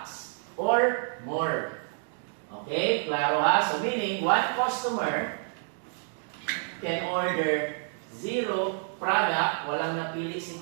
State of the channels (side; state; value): left; silent; 59 dB below the other